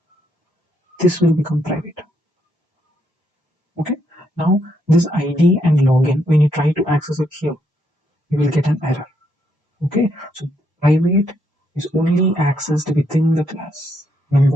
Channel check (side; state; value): both; normal; correlation 0.76